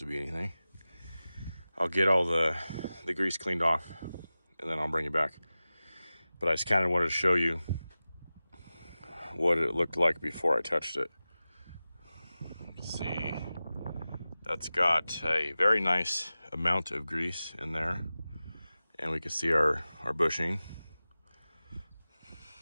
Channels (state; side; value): inverted; both; correlation -0.96